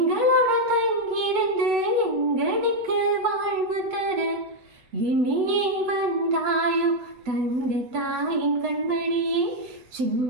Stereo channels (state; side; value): late; left; 8.0 ms